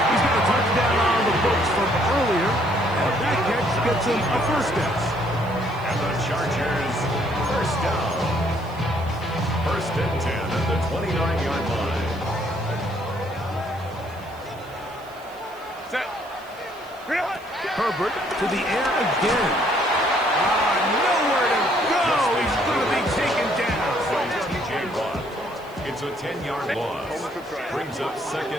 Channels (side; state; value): right; noise; hiss, 26 dB below the sound